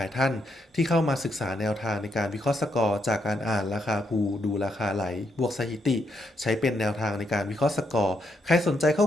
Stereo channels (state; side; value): normal; both; correlation 0.78